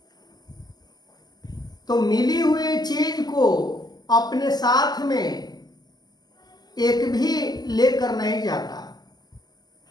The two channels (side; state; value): right; late; 0.20 ms